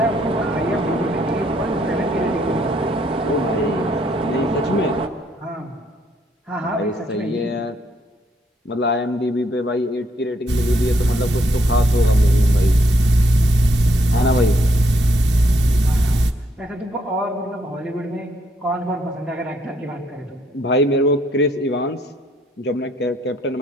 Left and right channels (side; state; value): both; normal; correlation 0.72